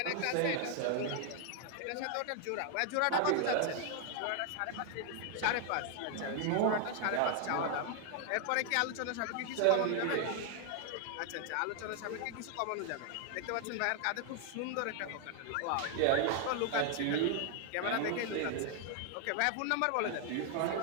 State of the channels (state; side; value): different; both; correlation 0.00